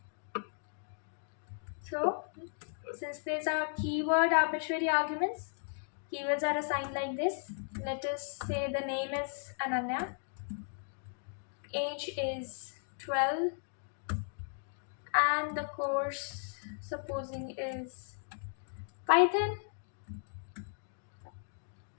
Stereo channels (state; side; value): silent; right; digital silence